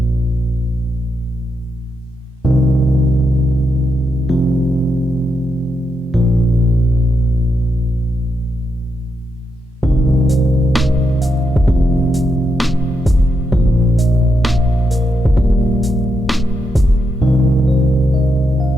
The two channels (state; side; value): normal; both; correlation 0.83